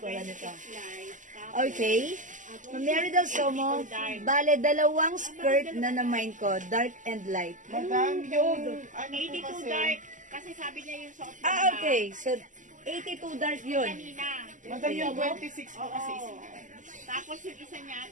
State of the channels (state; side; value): late; left; 0.37 ms